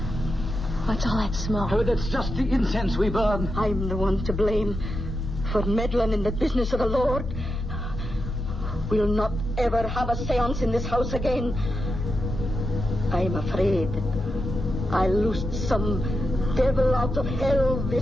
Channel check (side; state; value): both; normal; correlation 0.87